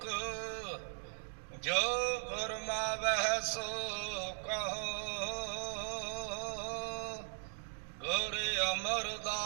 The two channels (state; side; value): silent; left; digital silence